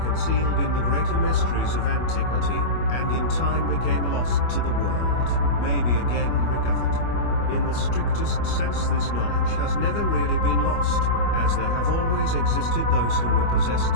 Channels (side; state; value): right; late; 25 ms